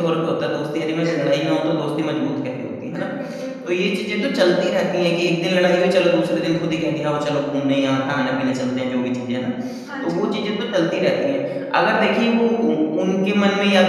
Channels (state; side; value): identical; both; correlation 1.00